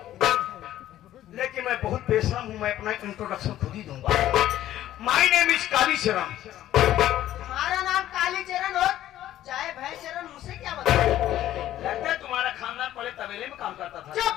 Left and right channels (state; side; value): quieter; right; 13.1 dB